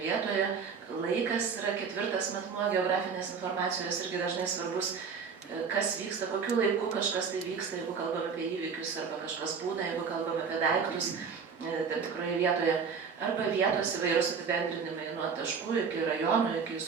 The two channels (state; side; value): quieter; left; 5.9 dB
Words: Laikas yra ketvirtas matmuo geografinės informacijos, irgi dažnai svarbus, kas vyksta, kokiu laiku kažkas tai vyksta, jeigu kalbame apie įvykius, arba kažkas būna, jeigu kalbame apie daiktus tam tikroje vietoje, arba vietos įvairūs apibendrinimai nuo taškų iki rajonų, iki